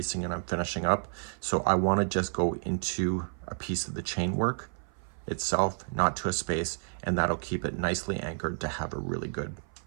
and I'm finishing up. So I want to just go into a piece of the chain work itself, not to a space, and that'll keep it nicely anchored to have a really good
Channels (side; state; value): left; silent; 55 dB below the other